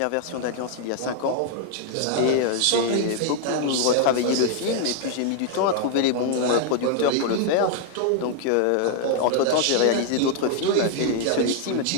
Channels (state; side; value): different; both; correlation 0.00